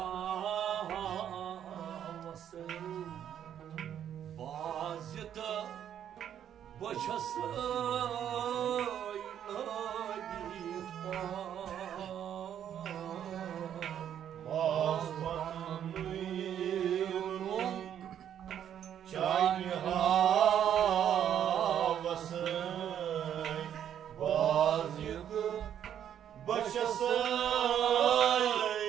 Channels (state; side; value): quieter; left; 9.7 dB